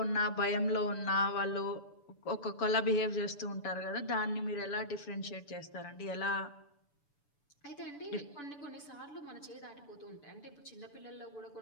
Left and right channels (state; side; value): late; right; 6.9 ms